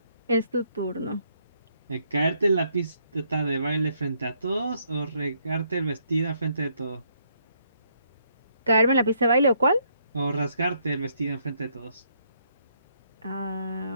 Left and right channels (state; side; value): inverted; both; correlation -0.72